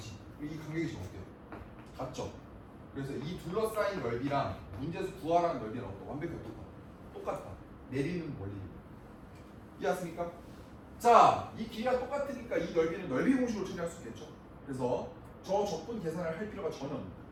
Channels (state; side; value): identical; both; correlation 1.00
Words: 이 간격이 지금 어때요? 같죠? 그래서 이 둘러싸인 넓이랑 문제에서 구하라는 넓이랑 완벽히 똑같다. 내리는 원리. 이해하십니까? 자, 이 길이가 똑같으니까 이 넓이는 넓이 공식으로 처리할 수 있겠죠. 그래서 저 적분 계산을 할 필요가 전혀 없습니다.